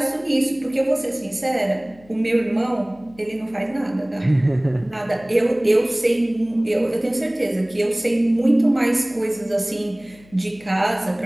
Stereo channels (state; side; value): noise; left; hum, 26 dB below the sound